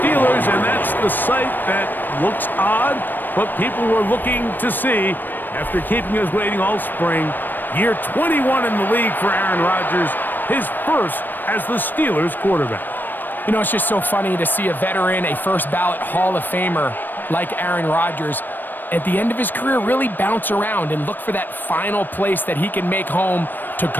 and that's the sight that looks odd, but people were looking to see after keeping us waiting all spring. Year 21 in the league for Aaron Rodgers, his first as the Steelers quarterback. You know, it's just so funny to see a veteran, a first-ballot Hall of Famer like Aaron Rodgers, at the end of his career, really bounce around and look for that final place that he can make home to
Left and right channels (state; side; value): late; right; 0.091 ms